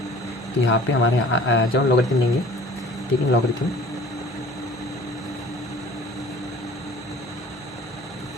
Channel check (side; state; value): both; normal; correlation 0.48